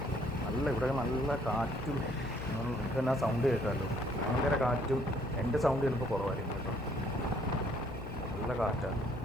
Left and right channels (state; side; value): noise; left; hum, 9 dB below the sound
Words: ഇവിടെ നല്ല കാറ്റും. നിങ്ങൾക്ക് തന്നെ ആ സൗണ്ട് കേൾക്കാമല്ലോ. ഭയങ്കര കാറ്റും. എൻ്റെ സൗണ്ട് ചിലപ്പോൾ കുറവായിരിക്കും കേട്ടോ. നല്ല കാറ്റാണ്.